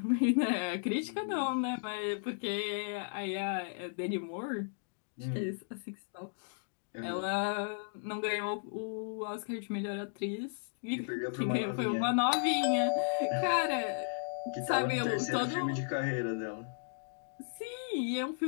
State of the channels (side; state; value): right; silent; digital silence